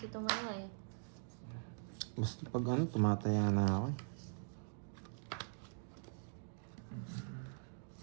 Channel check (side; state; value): left; silent; digital silence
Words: tumaya eh. Basta pag ano, tumataya na ako eh.